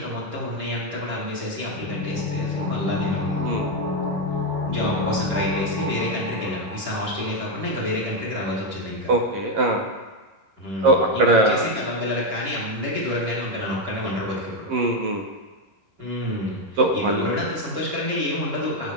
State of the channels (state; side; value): late; left; 11 ms